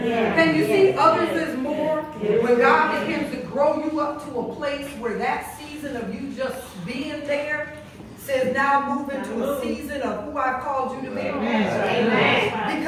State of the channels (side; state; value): both; identical; correlation 1.00